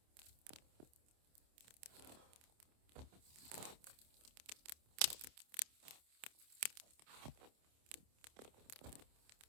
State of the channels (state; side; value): late; left; 27 ms